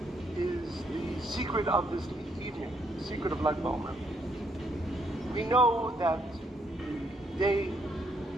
is the secret of this evening, the secret of Lag BaOmer. We know that the day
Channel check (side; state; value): both; normal; correlation 0.73